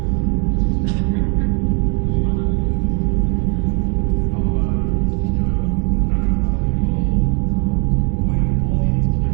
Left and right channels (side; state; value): left; quieter; 34.3 dB